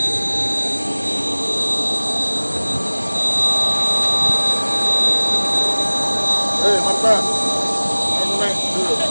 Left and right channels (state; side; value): inverted; both; correlation -1.00